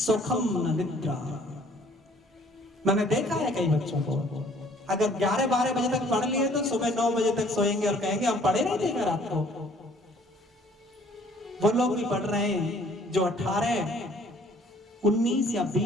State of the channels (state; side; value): normal; both; correlation 0.58